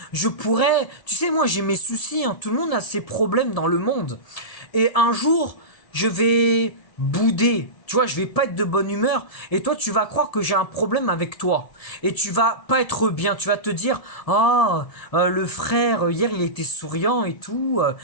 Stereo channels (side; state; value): right; late; 1.7 ms